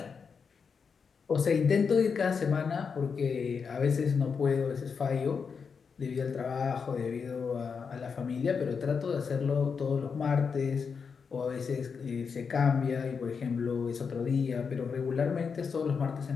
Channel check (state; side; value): quieter; right; 5.8 dB